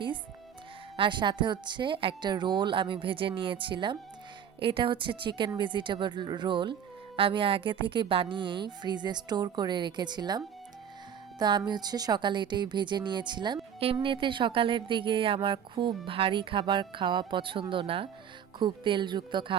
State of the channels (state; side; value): quieter; left; 8.5 dB